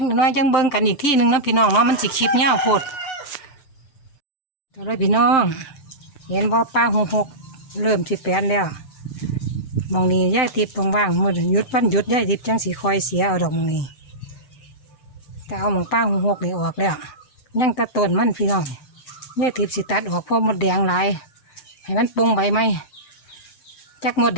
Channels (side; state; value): right; late; 6.8 ms